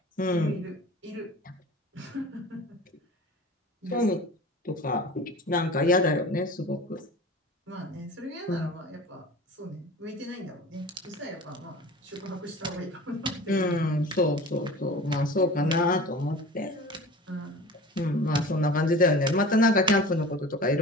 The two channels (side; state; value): both; normal; correlation 0.39